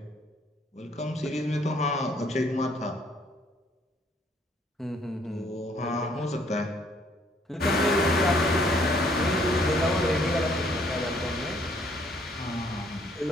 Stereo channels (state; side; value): normal; both; correlation 0.64